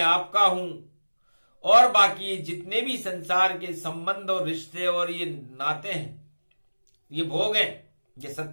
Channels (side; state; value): both; inverted; correlation -1.00